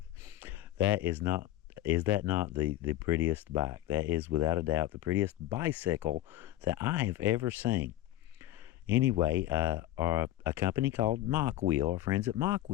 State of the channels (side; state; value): right; quieter; 14.2 dB